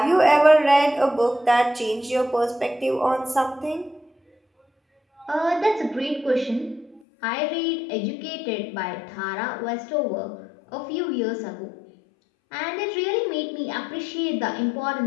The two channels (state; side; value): drops out; right; at 7.0 s